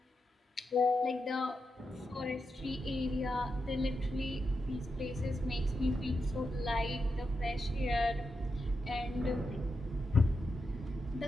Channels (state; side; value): normal; both; correlation 0.86